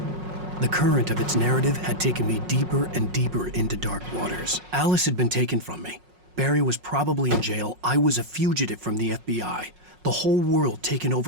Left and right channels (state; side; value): late; left; 5.5 ms